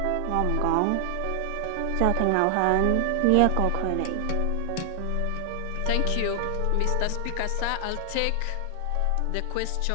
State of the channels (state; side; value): different; both; correlation 0.00